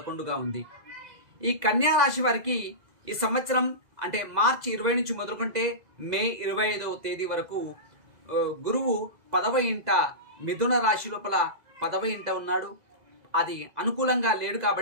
ఉంది. ఈ కన్యారాశి వారికి ఈ సంవత్సరం అంటే మార్చి 20 నుంచి మొదలుకుంటే మే 25వ తేదీ వరకు గురువు 10వ ఇంట మిథున రాశి లోపల 10వ ఇంట ఉన్నాడు. అది అనుకూలంగా లేడు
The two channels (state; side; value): late; left; 2.0 ms